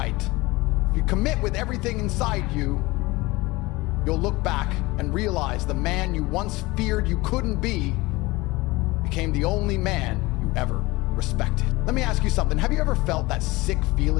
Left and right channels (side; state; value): right; quieter; 21.7 dB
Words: if you commit with everything inside you, you'll look back and realize the man you once feared you couldn't be became the only man you ever respected. Let me ask you something. Have you ever felt that sick